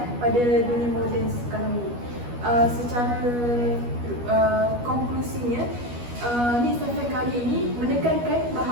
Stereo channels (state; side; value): late; left; 12 ms